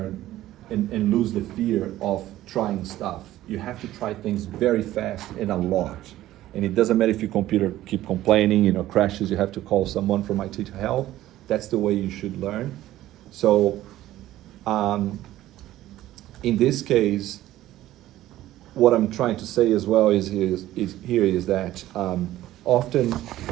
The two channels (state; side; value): quieter; left; 14.6 dB